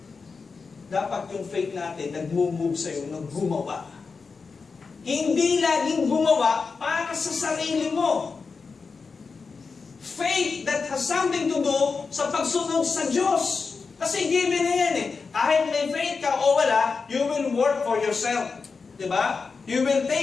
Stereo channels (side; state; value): right; quieter; 4.8 dB